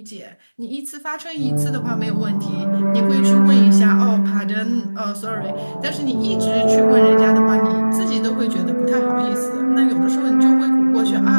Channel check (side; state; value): both; inverted; correlation -1.00